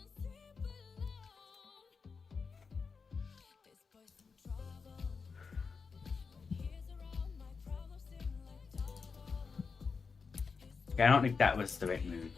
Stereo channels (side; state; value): right; quieter; 5.1 dB